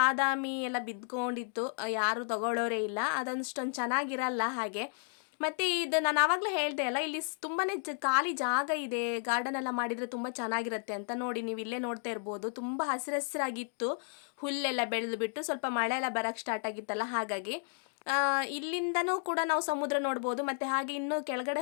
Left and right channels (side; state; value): right; silent; 56 dB below the other